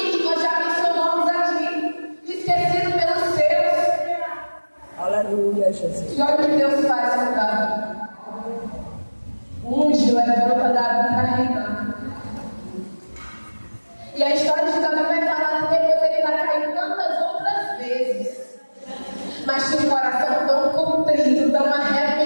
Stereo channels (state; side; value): inverted; both; correlation -1.00